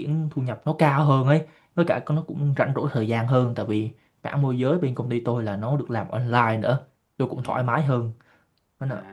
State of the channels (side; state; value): both; identical; correlation 1.00